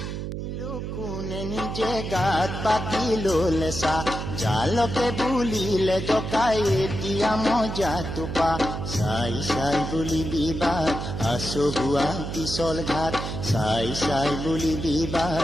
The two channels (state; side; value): noise; right; hum, 5 dB below the sound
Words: কোনে নিজে গাত পাতি ললেছা জালকে বুলিলে জকাই এতিয়া মজা টোপা চাই চাই বুলি বিবাদ আচহুৱা পিছল ঘাট চাই চাই বুলি